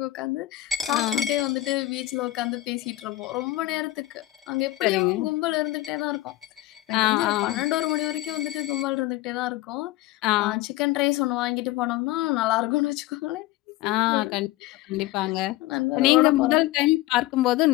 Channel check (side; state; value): right; quieter; 16.7 dB